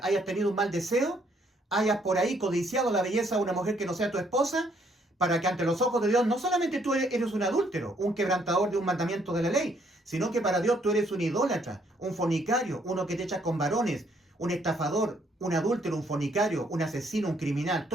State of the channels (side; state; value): both; normal; correlation 0.68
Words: hayas tenido un mal deseo, hayas por ahí codiciado la belleza de una mujer que no sea tu esposa, para que ante los ojos de Dios no solamente tú eres un adúltero, un quebrantador de un mandamiento de la ley, sino que para Dios tú eres un idólatra, un fornicario, uno que te echas con varones, un estafador, un adúltero, un fornicario, un asesino, un criminal,